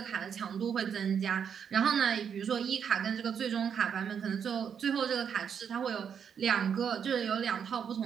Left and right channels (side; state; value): left; quieter; 7.6 dB